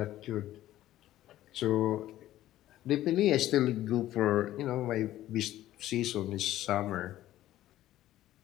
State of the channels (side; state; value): right; quieter; 14.0 dB